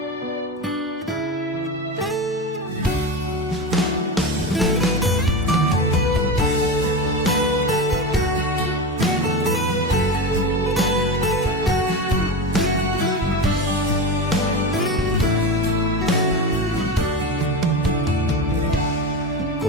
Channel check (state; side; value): normal; both; correlation 0.22